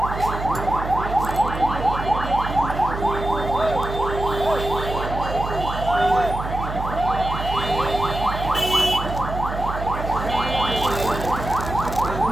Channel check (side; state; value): right; noise; hum, 6 dB below the sound